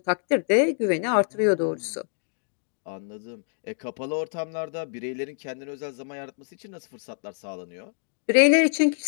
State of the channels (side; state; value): right; silent; digital silence